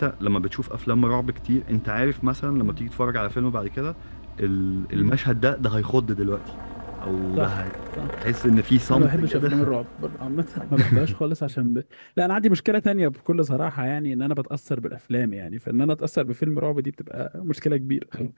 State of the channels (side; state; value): both; inverted; correlation -1.00